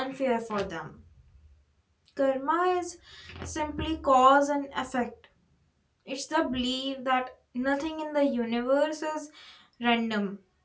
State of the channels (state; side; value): identical; both; correlation 1.00